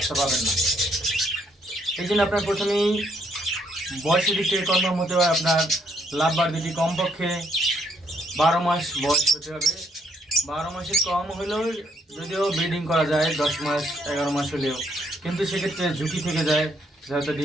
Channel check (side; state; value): both; normal; correlation 0.71